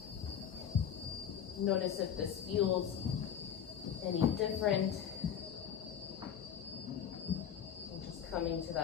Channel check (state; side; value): quieter; right; 8.7 dB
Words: Notice if this feels any different. And just coming to